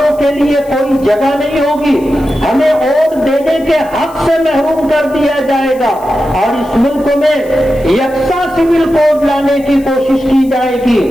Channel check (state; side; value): noise; left; hiss, 25 dB below the sound